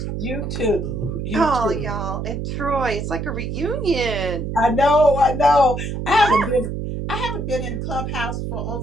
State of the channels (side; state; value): right; noise; hum, 4 dB below the sound